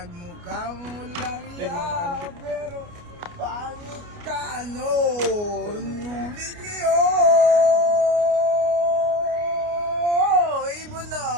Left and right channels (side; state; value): left; late; 29 ms